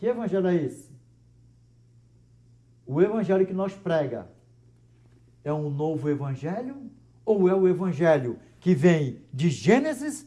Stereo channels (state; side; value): identical; both; correlation 1.00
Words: evangelho é esse? O evangelho que nós prega é um novo evangelho ou é o evangelho que vem de Gênesis